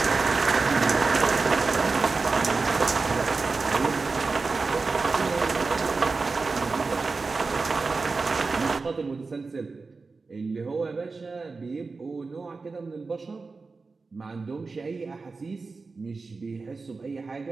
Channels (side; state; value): left; quieter; 4.1 dB